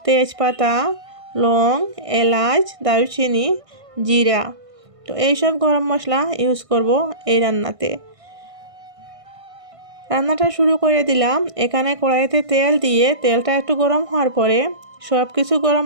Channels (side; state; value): left; late; 1.6 ms